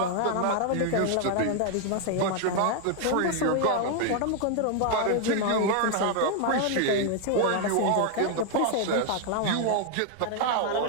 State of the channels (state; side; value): different; both; correlation 0.00